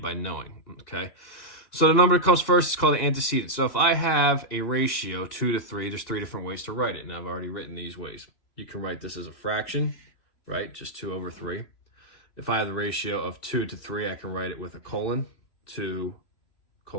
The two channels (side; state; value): right; late; 3.0 ms